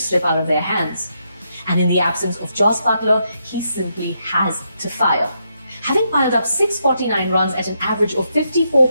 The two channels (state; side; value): inverted; both; correlation -0.80